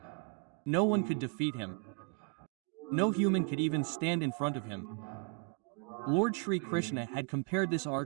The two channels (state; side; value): quieter; left; 33.2 dB